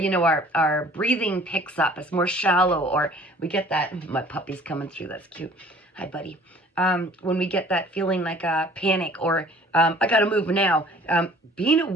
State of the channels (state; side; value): normal; both; correlation 0.51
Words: know, our breathing picks up, it's more shallow, or we get that, my puppy's coming through, that's cute. Hi, buddy. When we get that feeling like a panic, or I gotta move now, being